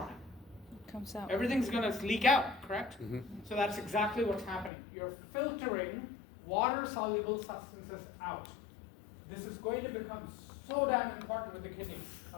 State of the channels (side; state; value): right; drops out; at 4.7 s